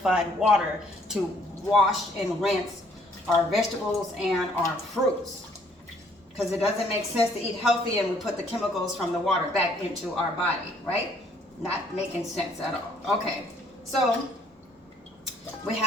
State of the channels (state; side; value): normal; both; correlation 0.63